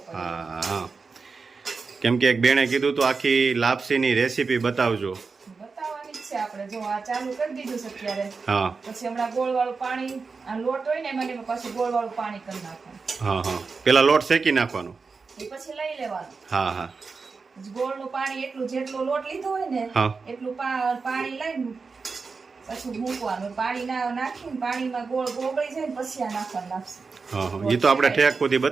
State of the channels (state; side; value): quieter; left; 4.7 dB